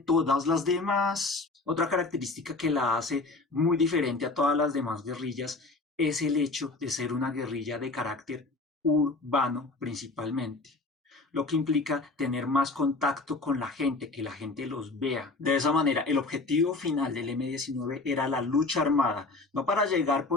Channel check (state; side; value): quieter; right; 3.5 dB